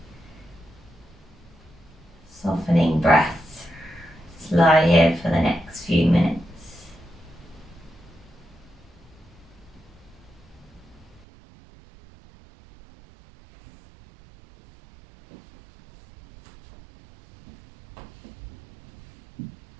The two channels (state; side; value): drops out; left; at 11.2 s